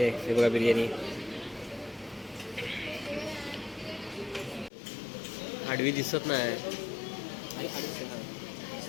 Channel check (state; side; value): drops out; right; at 4.7 s